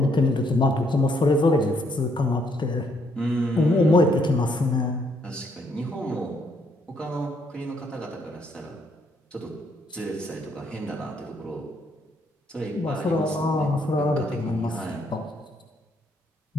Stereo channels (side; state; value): both; normal; correlation 0.71